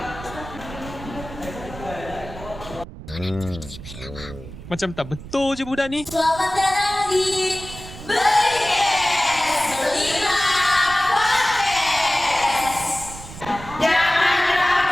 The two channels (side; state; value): right; noise; rumble, 13 dB below the sound